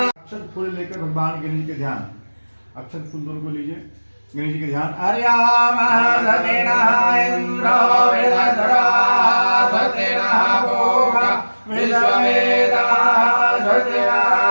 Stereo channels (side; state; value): both; inverted; correlation -1.00